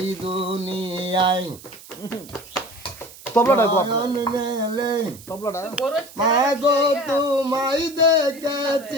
দুনিয়ায় নয়ন মেলে মাগো তোমায়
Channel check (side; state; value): right; noise; hiss, 19 dB below the sound